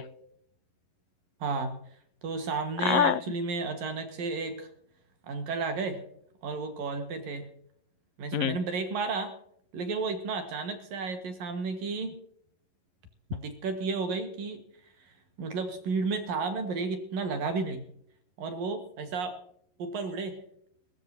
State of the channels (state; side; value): late; left; 11 ms